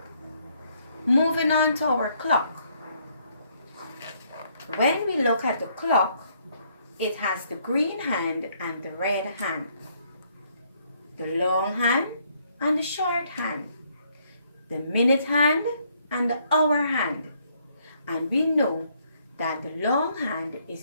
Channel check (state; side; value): inverted; both; correlation -0.69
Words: Moving on to our clock. When we look at the clock, it has the green hand and the red hand, the long hand and the short hand, the minute hand and the hour hand. And we know that the long hand